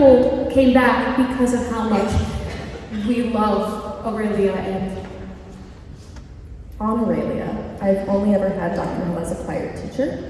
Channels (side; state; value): both; identical; correlation 1.00